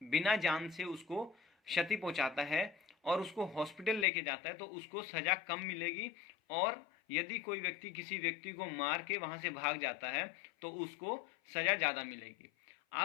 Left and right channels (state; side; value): drops out; right; at 4.0 s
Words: बिना जान से उसको क्षति पहुंचाता है और उसको हॉस्पिटल लेके जाता है, तो उसको सजा कम मिलेगी। और यदि कोई व्यक्ति किसी व्यक्ति को मार के वहां से भाग जाता है तो उसको सजा ज्यादा मिलेगी।